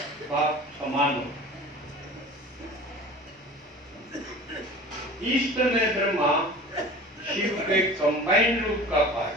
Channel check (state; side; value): normal; both; correlation 0.40